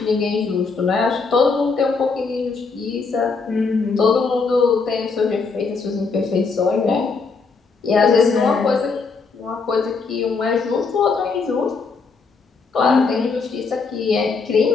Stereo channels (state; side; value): quieter; right; 4.6 dB